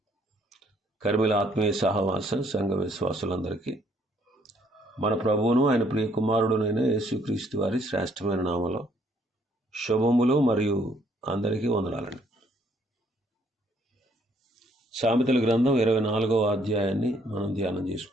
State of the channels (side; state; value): both; normal; correlation 0.66